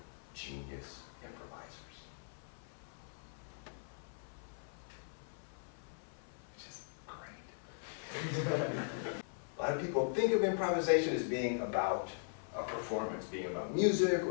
genius improvisers. Which is great. A lot of people think of improvisation as being about a performance, being about music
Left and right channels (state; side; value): silent; right; 51 dB below the other